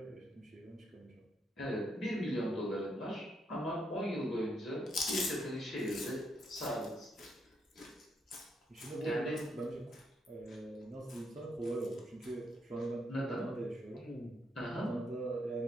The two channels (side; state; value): both; normal; correlation 0.76